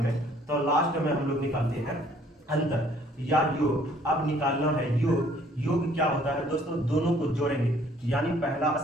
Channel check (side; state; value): both; normal; correlation 0.60